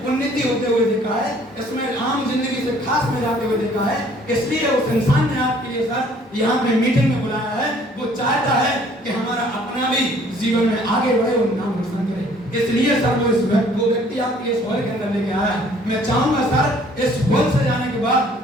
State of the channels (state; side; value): normal; both; correlation 0.58